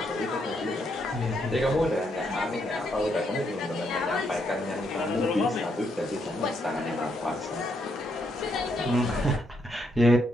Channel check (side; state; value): both; normal; correlation 0.76